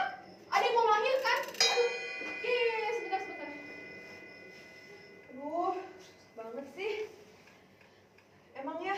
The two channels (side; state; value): both; identical; correlation 1.00